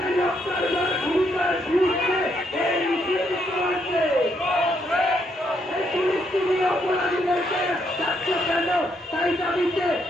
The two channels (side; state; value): both; normal; correlation 0.75